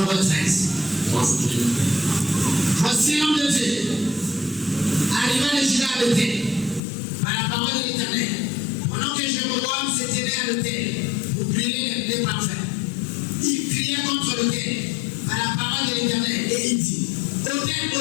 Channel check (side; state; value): right; drops out; at 6.8 s